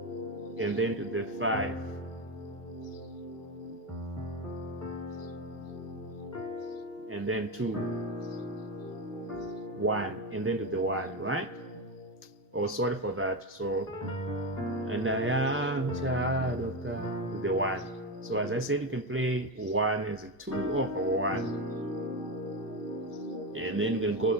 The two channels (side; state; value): both; normal; correlation 0.15